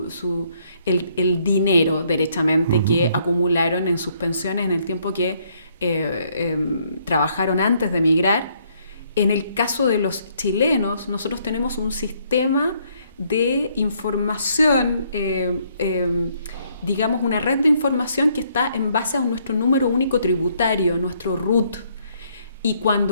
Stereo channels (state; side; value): inverted; both; correlation -0.68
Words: el dinero, derechamente, que acumularon en sus pensiones en el tiempo que trabajaron antes de emigrar. En el caso de los chilenos, nosotros tenemos un sistema de información, digamos una red de información que está en base a nuestro número único tributario, nuestro RUT. Y